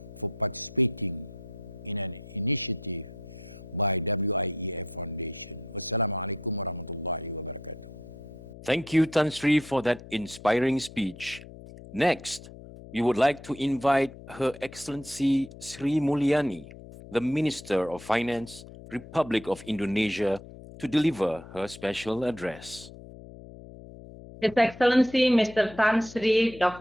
for participating in an initiative by WIEF Foundation. Wassalamualaikum warahmatullahi wabarakatuh. Thank you, Tan Sri, for that inspiring speech. Next, we would like to invite Her Excellency Sri Mulyani, the Minister of Finance, Republic of Indonesia, to deliver her special address. His Excellency Mr. Tan Sri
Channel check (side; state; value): left; noise; hum, 16 dB below the sound